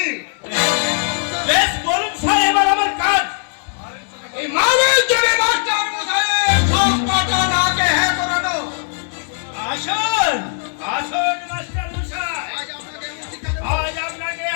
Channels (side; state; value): right; silent; digital silence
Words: বেশ বলুন স্যার, এবার আমার কাজ। এই মানের জন্য মাস্টার মশাইয়ের সব কথা নাকে হ্যাঁ করানো। আসুন আসুন মাস্টার মশাই, আজ আপনাকে